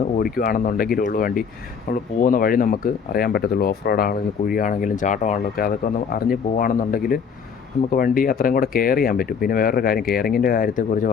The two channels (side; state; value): right; quieter; 6.4 dB